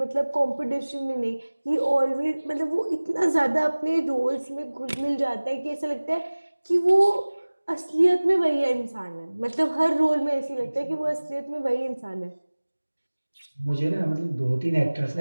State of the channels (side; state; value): both; inverted; correlation -1.00